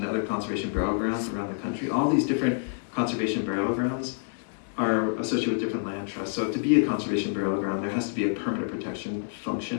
the other conservation burial grounds around the country. All these different conservation burial grounds are associated with different land trusts. So to be a conservation burial ground, there has to be a permanent protection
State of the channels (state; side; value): silent; right; digital silence